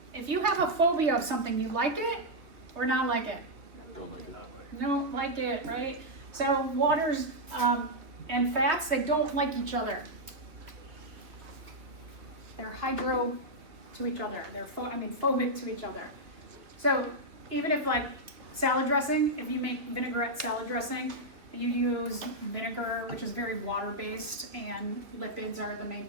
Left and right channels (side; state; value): left; late; 3.0 ms